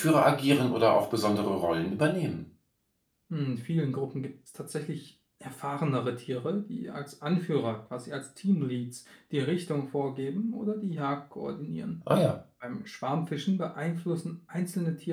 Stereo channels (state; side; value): identical; both; correlation 1.00